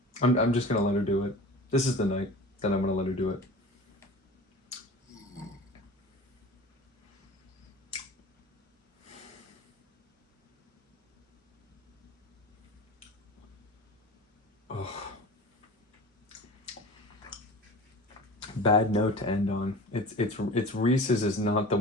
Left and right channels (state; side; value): normal; both; correlation 0.37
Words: I'm just going to let her do it. This is the night that I'm going to let her do it. bad note to end on. It's Reese's is not the